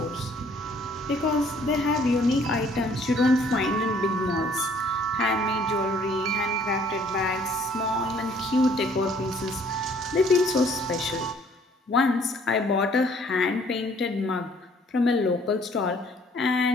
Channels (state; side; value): normal; both; correlation 0.60